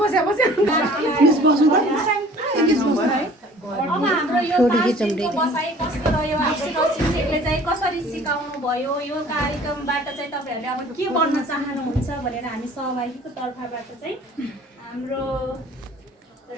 अब हाम्रो यो बसाइ कस्तो रह्यो हाम्रो शिक्षकले चाहिँ कसरी सिकाउनु भयो यो कार्यक्रमबाट चाहिँ तपाईँहरूले अब के बन्न चाहनुहुन्छ भनेर हामी सहभागीको तर्फबाट चाहिँ हाम्रो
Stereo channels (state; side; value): normal; both; correlation 0.49